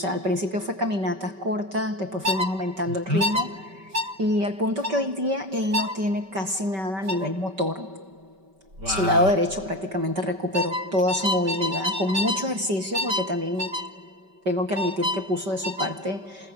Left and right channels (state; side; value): late; left; 5.2 ms